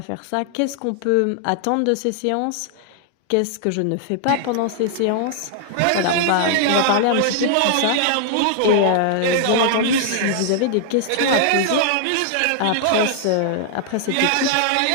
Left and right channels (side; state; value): both; different; correlation 0.00